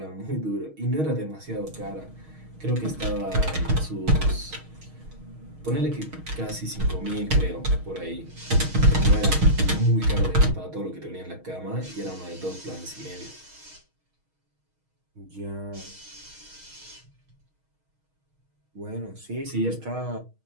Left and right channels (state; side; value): late; left; 6.4 ms